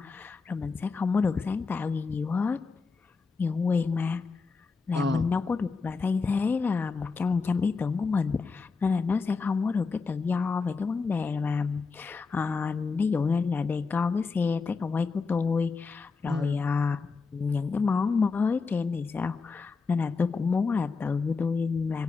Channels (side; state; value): right; quieter; 4.6 dB